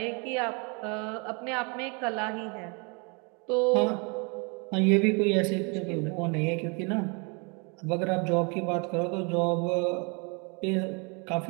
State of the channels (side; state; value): left; quieter; 32.8 dB